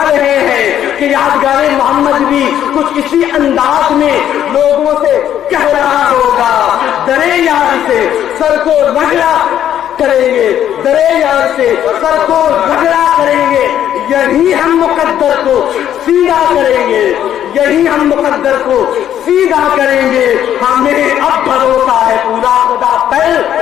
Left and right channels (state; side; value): quieter; right; 10.6 dB